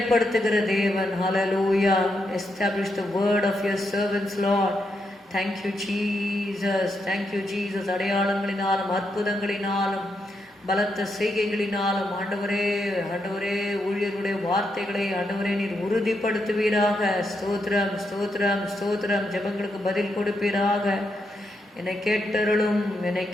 தேவன். Hallelujah. Establish the word of your servants Lord. Thank you Jesus. Thank you Jesus. அடையாளங்களினாலும் அற்புதங்களினாலும் பலத்த செய்கைகளினாலும் ஆண்டவரே ஆண்டவரே ஊழியர்களுடைய வார்த்தைகளை ஆண்டவரே நீர் உறுதிப்படுத்துவீராக. ஸ்தோத்திரம் ஸ்தோத்திரம் ஸ்தோத்திரம். ஜெபங்களுக்கு பதில் கொடுப்பீராக. என்னை கேட்டருளும் என்னை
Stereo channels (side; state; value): both; normal; correlation 0.81